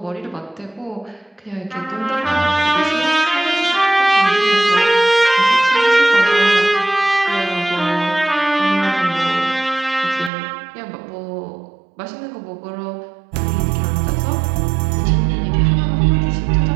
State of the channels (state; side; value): drops out; left; at 10.3 s